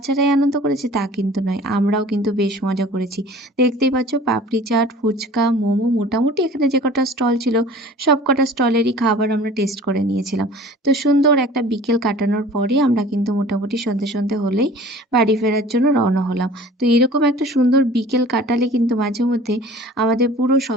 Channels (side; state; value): both; normal; correlation 0.45